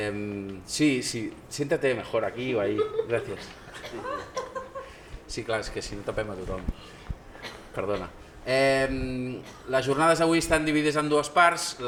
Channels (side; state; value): both; identical; correlation 1.00